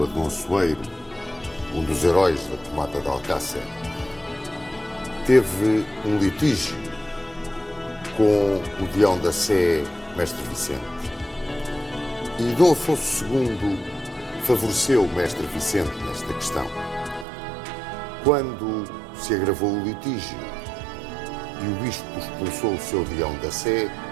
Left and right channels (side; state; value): left; drops out; at 17.2 s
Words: Dom Soeiro, um dos heróis da tomada de Alcácer, teve um litígio com o deão da Sé, Mestre Vicente. E Dom Afonso II favoreceu o Mestre Vicente nesta questão. Quando se agravou o litígio e o bispo expulsou o seu deão da Sé,